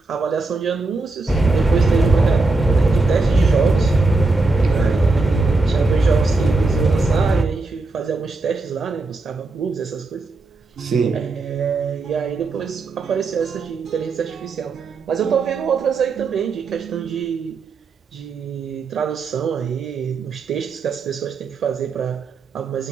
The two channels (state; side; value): quieter; left; 3.6 dB